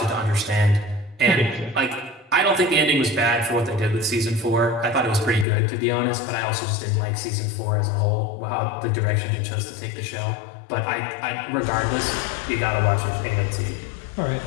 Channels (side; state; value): right; drops out; at 5.5 s